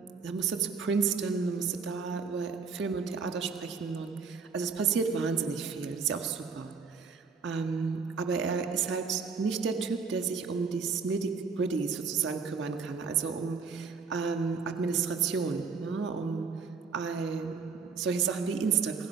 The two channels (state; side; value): quieter; left; 5.3 dB